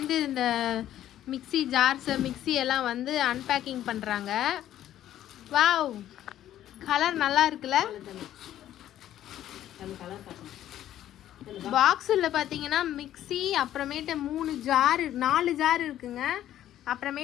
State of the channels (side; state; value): right; quieter; 12.2 dB